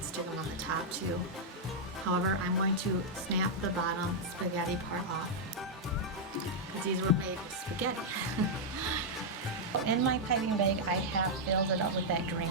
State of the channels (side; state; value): both; normal; correlation -0.05